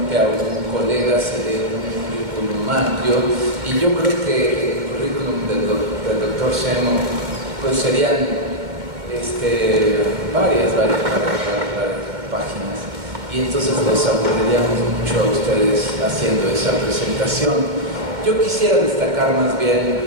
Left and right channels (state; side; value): late; left; 2.2 ms